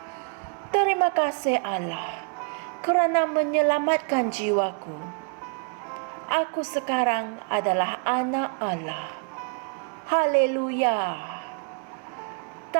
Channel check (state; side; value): quieter; left; 39.5 dB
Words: Terima kasih Allah kerana menyelamatkan jiwaku. Aku sekarang adalah anak Allah. Haleluya.